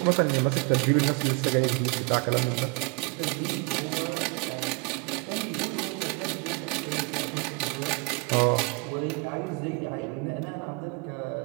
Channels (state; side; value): quieter; left; 32.2 dB